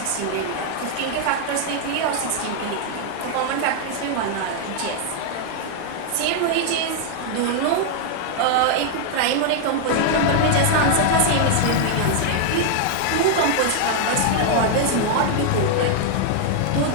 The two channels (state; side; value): different; both; correlation 0.00